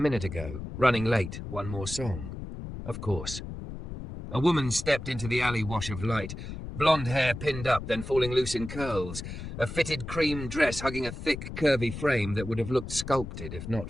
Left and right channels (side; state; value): left; noise; rumble, 9 dB below the sound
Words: ago, running late, one more song. Of course. A woman stepped into the alley wash of light, blonde hair pinned up, then falling loose in curls, a fitted cream dress hugging a thick, curvy frame that would have looked sculpted if not